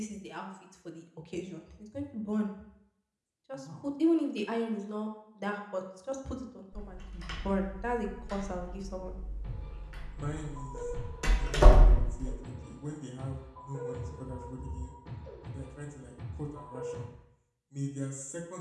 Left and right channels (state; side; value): identical; both; correlation 1.00